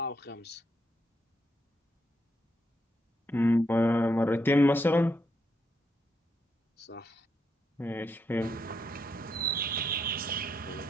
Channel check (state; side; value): normal; both; correlation 0.79